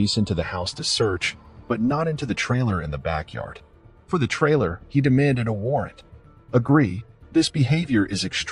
into the house to search, but not into the trailer in the backyard. For the trailer, he demanded a warrant. Agree, this behavior is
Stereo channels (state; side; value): identical; both; correlation 1.00